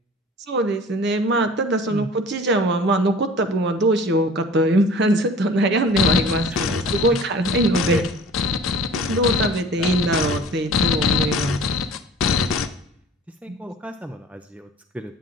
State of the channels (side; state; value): both; normal; correlation 0.44